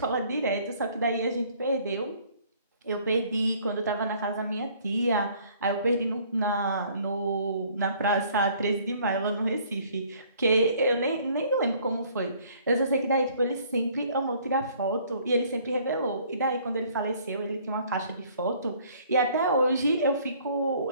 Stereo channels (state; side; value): inverted; both; correlation -0.58